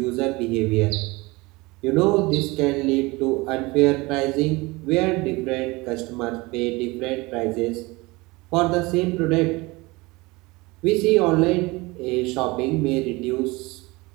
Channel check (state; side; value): quieter; left; 23.2 dB